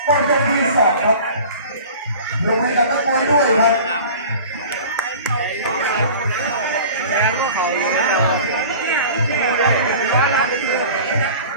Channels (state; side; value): inverted; both; correlation -0.41